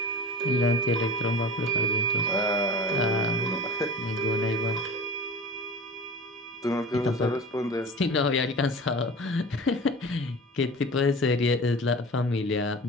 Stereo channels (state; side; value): normal; both; correlation 0.36